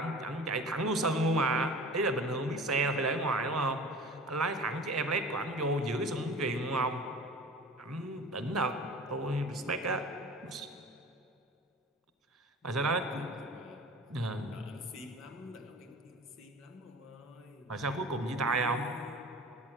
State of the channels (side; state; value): both; normal; correlation 0.39